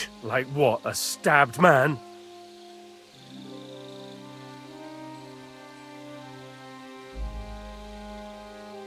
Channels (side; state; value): both; identical; correlation 1.00